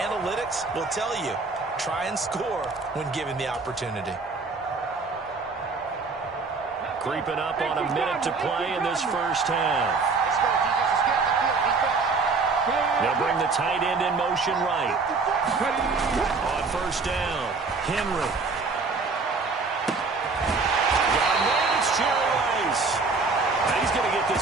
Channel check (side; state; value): left; quieter; 4.3 dB